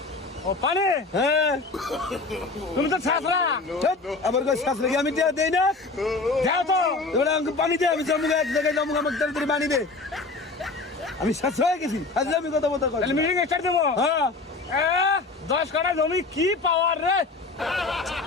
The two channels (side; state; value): right; quieter; 3.7 dB